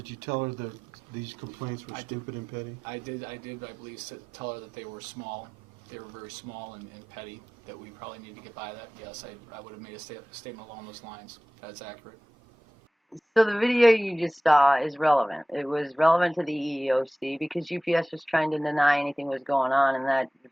you tell her that these complaints were stupid and petty? I did, I believe, tell her that they were small. They were very small and petty, that we probably need to get by that. Yes, I would have made a statement along those lines. That's accurate. So the video you just saw is relevant. It was relevant to the EEOC because UPS was trying to deny anything was going on, and that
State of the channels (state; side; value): normal; both; correlation 0.96